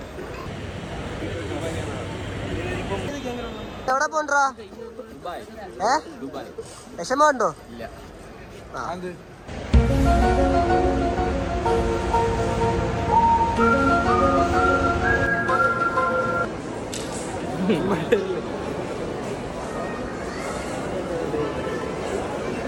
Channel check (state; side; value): identical; both; correlation 1.00